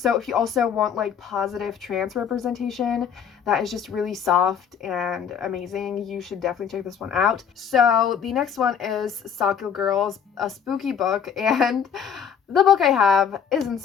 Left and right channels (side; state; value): right; quieter; 7.6 dB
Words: if you also want like positive trans representation that is just really soft and amazing, you should definitely check this one out. So the next one is Sakyo Girls, a spooky book, and the book I have isn't